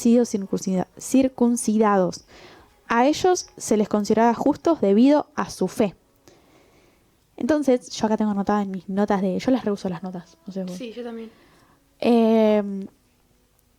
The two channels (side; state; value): both; identical; correlation 1.00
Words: circuncidados. A ellos se les consideraba justos debido a su fe. Entonces, yo acá tengo anotadas en mis notas yo las reuso las notas. No sé vos. Sí, yo también.